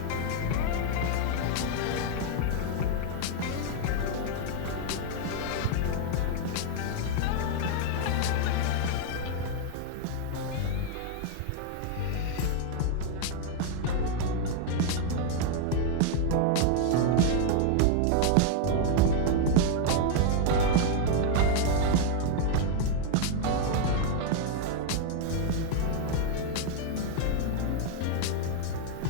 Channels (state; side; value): different; both; correlation 0.00